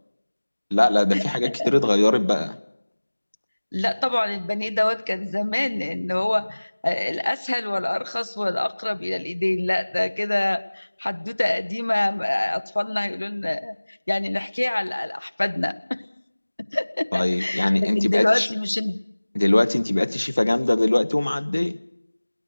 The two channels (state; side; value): inverted; both; correlation -1.00